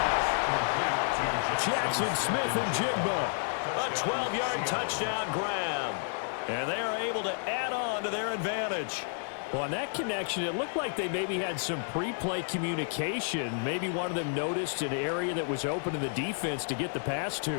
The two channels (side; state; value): right; silent; 57 dB below the other